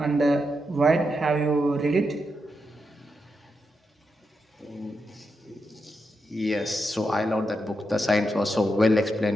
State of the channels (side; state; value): both; normal; correlation 0.85